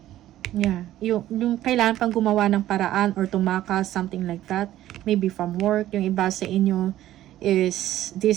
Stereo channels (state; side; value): quieter; left; 13.5 dB